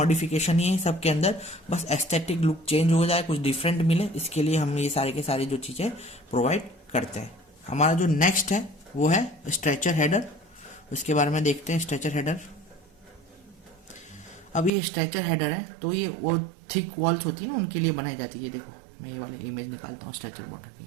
ही है सबके अंदर, बस एस्थेटिक लुक चेंज हो जाए, कुछ डिफरेंट मिले, इसके लिए हम ये सारे के सारे जो चीज़ें प्रोवाइड करते हैं। हमारा जो नेक्स्ट है वो है स्ट्रेचर हेडर। उसके बारे में देखते हैं। स्ट्रेचर हेडर, अब ये स्ट्रेचर हेडर है तो ये वो थिक वॉल्स होती है ना, उनके लिए बनाई जाती है। देखो मैं ये वाली इमेज निकालता हूँ स्ट्रेचर बॉर्डर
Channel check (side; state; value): left; drops out; at 14.7 s